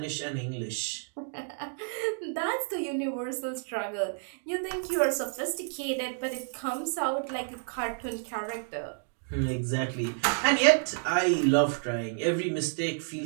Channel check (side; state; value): left; silent; 58 dB below the other